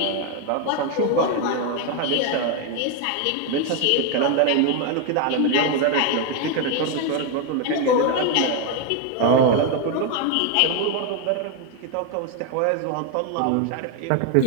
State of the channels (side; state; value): both; different; correlation 0.01